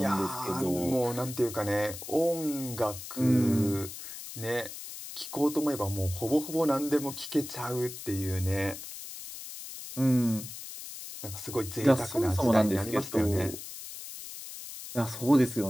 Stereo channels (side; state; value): left; noise; hiss, 11 dB below the sound